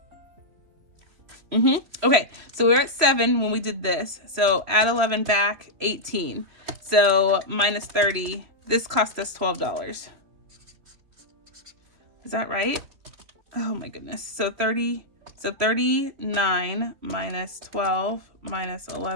Okay, so we were at 7 when we did this. So add 11 back, 18. So minus 30. This cost us $12. Is that right? Oh my goodness. So 39 minus 12 minus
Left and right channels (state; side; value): late; left; 3.6 ms